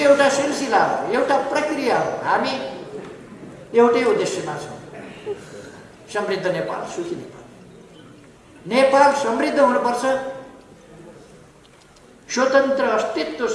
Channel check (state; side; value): identical; both; correlation 1.00